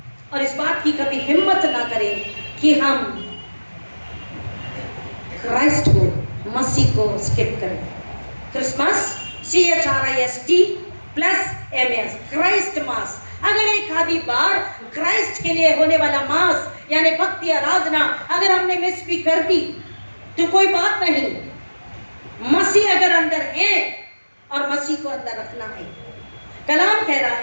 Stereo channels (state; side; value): inverted; both; correlation -1.00